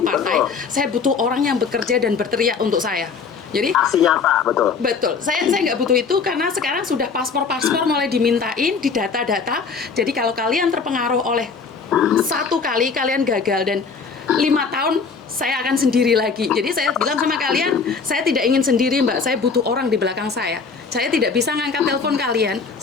partai. Saya butuh orang yang bekerja dan berteriak untuk saya. Jadi aksi nyata, betul. Saya nggak butuh itu karena sekarang sudah paspor mulai dimintain, di data-data. Jadi kalau kalian terpengaruh oleh satu kali kalian gagal dan 5 tahun saya akan sendiri lagi. Jadi saya bilang sama kalian, saya tidak ingin sendiri Mbak, saya butuh orang di belakang saya. Saya tidak bisa ngangkat telepon kalian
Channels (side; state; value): right; quieter; 5.2 dB